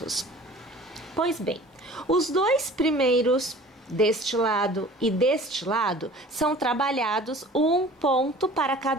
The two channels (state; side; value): normal; both; correlation 0.45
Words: Pois bem, os 2 primeiros deste lado e deste lado são trabalhados 1 ponto para